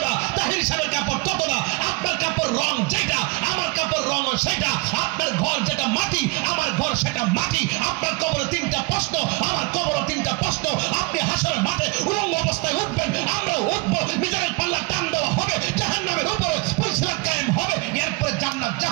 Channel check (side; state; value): left; quieter; 25.6 dB